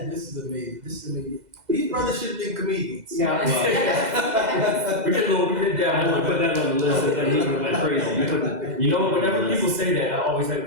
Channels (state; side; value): late; left; 2.0 ms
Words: amazing. These brothers should have been comedians. Yeah, We did that. I would put that on the list and then he went crazy. You know, whenever people say that, I always